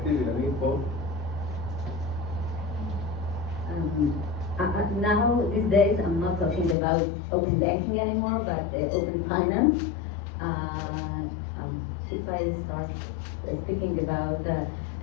Inanit, Paul? Now, these days, I'm not talking about open banking anymore, but open finance. If I start speaking about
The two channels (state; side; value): drops out; right; at 6.8 s